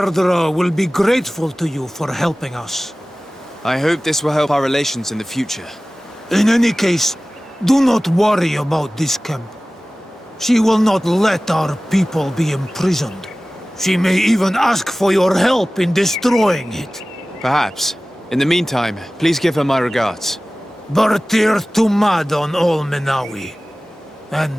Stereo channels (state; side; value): normal; both; correlation 0.97